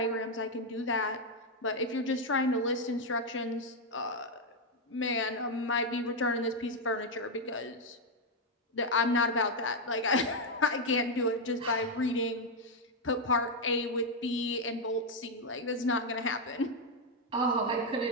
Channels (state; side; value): normal; both; correlation 0.02